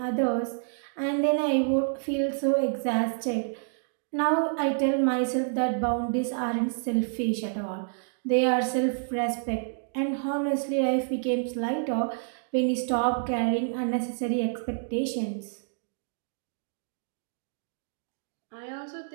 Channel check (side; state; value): left; silent; digital silence